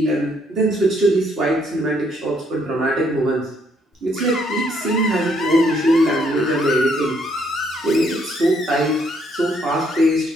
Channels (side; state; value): both; normal; correlation 0.70